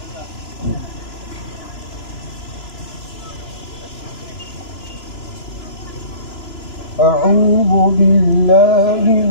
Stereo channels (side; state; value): right; late; 2.9 ms